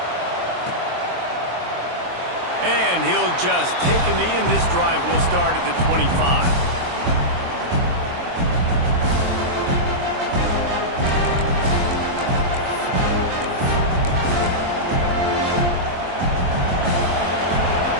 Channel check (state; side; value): late; left; 23 ms